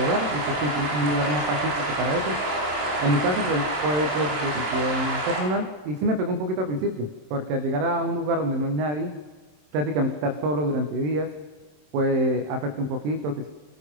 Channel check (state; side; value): late; left; 27 ms